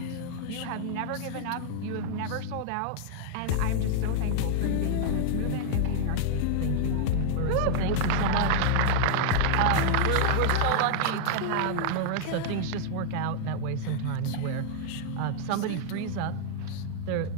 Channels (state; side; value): different; both; correlation -0.01